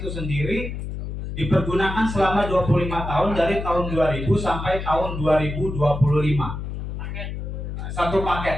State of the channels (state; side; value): noise; left; hum, 6 dB below the sound